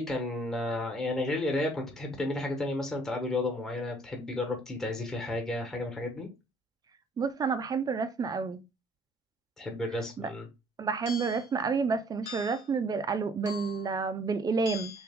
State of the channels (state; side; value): normal; both; correlation 0.60